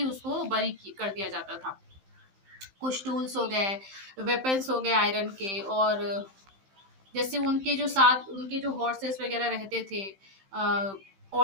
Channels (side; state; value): left; late; 15 ms